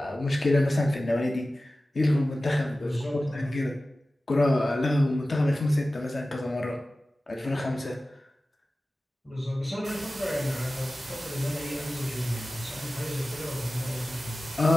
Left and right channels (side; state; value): both; normal; correlation 0.96